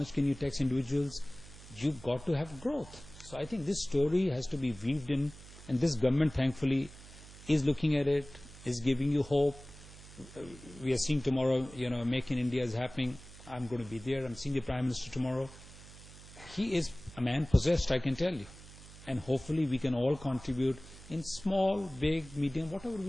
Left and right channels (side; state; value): right; noise; hum, 18 dB below the sound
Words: can you tax individuals? You've got to have growth. So I think this story has to be weaved in, and this government thankfully is looking at it, is giving you hope. We are seeing tomorrow, Make in India is happening. I'm going to be there. I'm seeing the Prime Minister tomorrow. He is a man possessed, I can tell you. And hopefully we can all contribute in small, big, medium, whatever